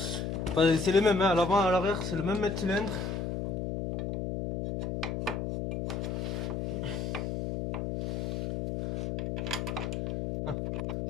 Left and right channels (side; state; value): left; noise; hum, 2 dB below the sound